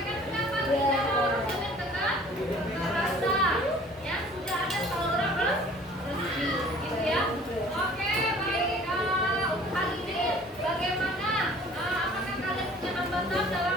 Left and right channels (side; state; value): both; normal; correlation 0.50